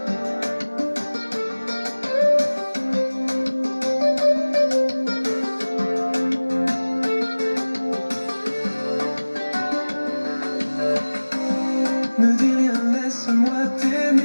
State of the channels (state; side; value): inverted; both; correlation -1.00